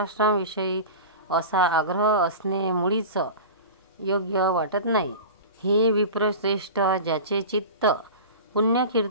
असा आग्रह असणे मुळीच योग्य वाटत नाही। हे विप्रश्रेष्ठ, ज्याचे चित्त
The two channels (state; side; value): inverted; both; correlation -0.32